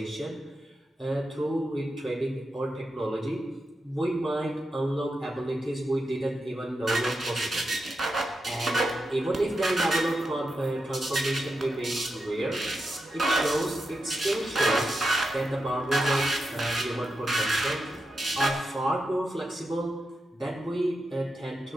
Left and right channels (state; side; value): normal; both; correlation 0.88